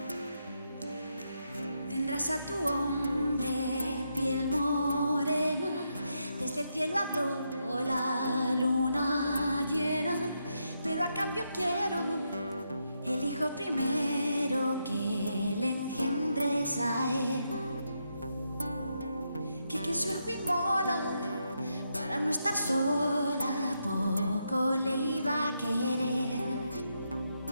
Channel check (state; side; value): inverted; both; correlation -0.82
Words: Tendrás a tu hombre piel morena, desde el cielo habló la luna llena, pero a cambio quiero el hijo primero que le engendres a él. Que su hijo inmola para no estar sola, poco le iba a querer.